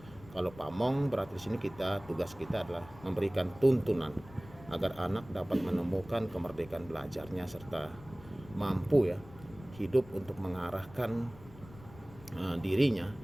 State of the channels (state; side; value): noise; left; rumble, 19 dB below the sound